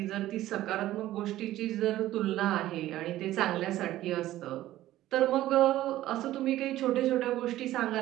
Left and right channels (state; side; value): quieter; left; 14.7 dB